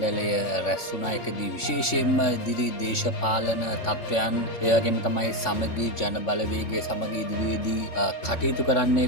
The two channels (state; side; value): late; right; 3.5 ms